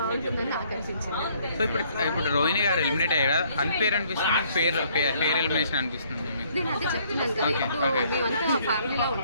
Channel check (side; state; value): both; inverted; correlation -0.64